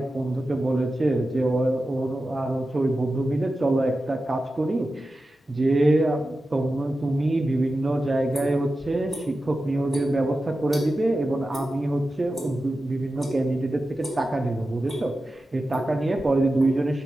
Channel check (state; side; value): normal; both; correlation 0.93